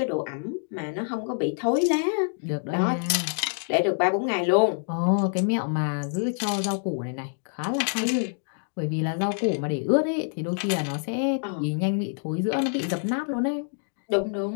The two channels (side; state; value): right; silent; digital silence